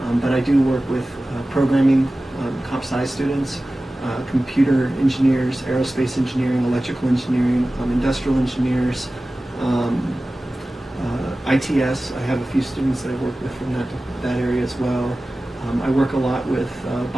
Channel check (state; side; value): normal; both; correlation 0.96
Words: But I do work with programming, comp sci students, computer engineers, aerospace engineering, electrical engineering, industrial engineers, ITS. I have a few students that I work with from that area as well. I work a lot with